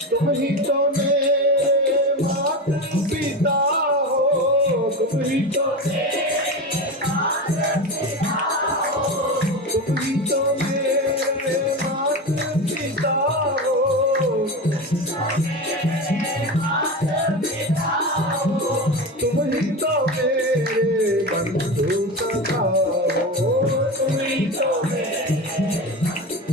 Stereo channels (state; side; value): normal; both; correlation 0.23